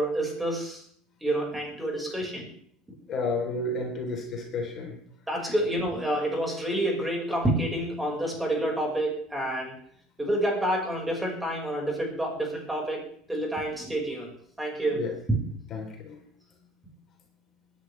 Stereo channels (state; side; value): normal; both; correlation 0.58